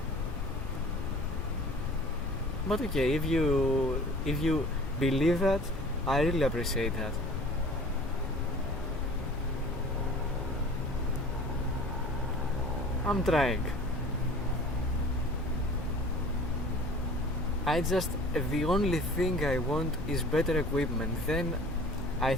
But okay, if you believe that, I really appreciate that. I'm trying. The only thing I want is better equipment. Then I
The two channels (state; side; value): normal; both; correlation 0.45